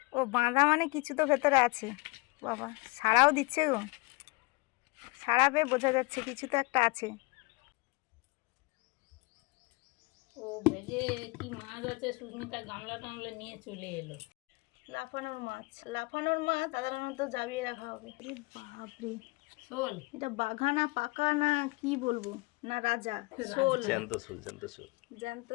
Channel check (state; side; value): quieter; right; 26.2 dB